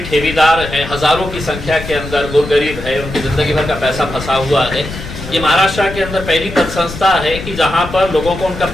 ठेकेदार हैं, हजारों की संख्या के अंदर गुरगरीब है, उनकी जिंदगी भर का पैसा फंसा हुआ है। ये महाराष्ट्र के अंदर पहली पद संस्था है कि जहां पर लोगों को उनका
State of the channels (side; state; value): left; noise; rumble, 10 dB below the sound